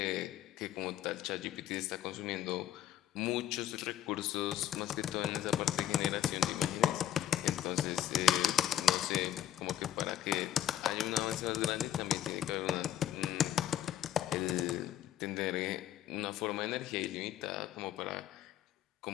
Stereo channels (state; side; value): quieter; right; 11.4 dB